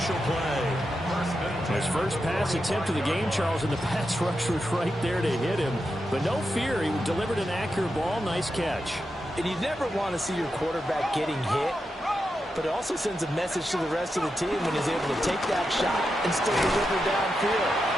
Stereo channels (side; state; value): both; normal; correlation 0.87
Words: play. His first pass attempt of the game, Charles, and the pass rush was right there to hit him. But no fear, he delivered an accurate ball. Nice catch. And you never want to see your quarterback getting hit, but it also sends a message to the rest of the team when he's able to take that shot and still deliver downfield.